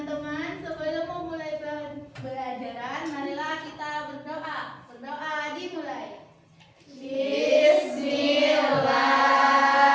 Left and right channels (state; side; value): identical; both; correlation 1.00